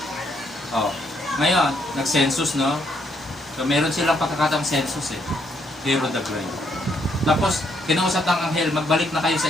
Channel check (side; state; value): both; normal; correlation 0.73